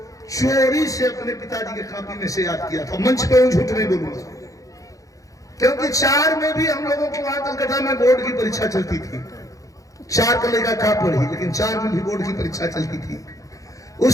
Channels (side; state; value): right; late; 0.16 ms